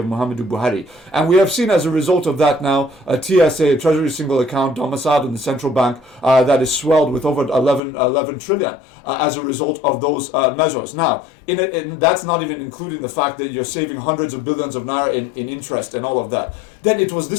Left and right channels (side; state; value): right; drops out; at 7.8 s